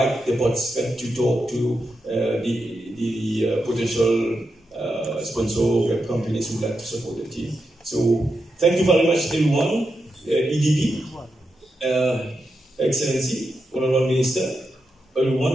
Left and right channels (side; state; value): both; normal; correlation 0.87